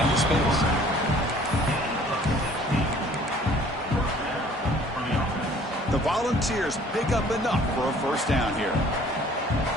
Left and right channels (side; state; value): both; normal; correlation 0.54